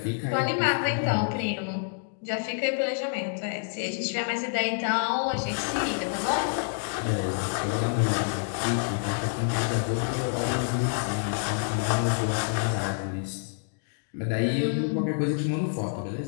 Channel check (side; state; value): right; silent; digital silence